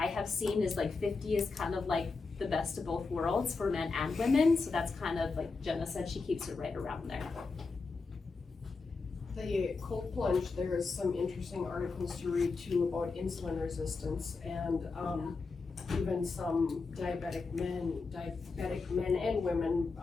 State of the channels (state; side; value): quieter; right; 4.2 dB